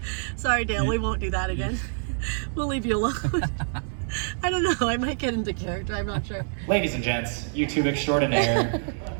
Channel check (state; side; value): silent; left; digital silence